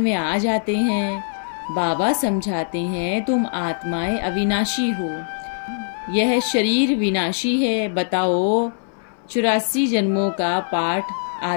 आ जाते हैं। बाबा समझाते हैं तुम आत्माएं अविनाशी हो, यह शरीर विनाशी है। बताओ 84 जन्मों का पाठ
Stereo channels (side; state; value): right; silent; 62 dB below the other